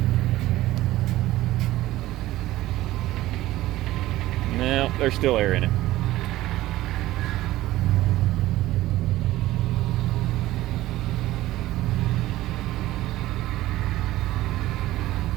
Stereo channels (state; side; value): quieter; left; 16.1 dB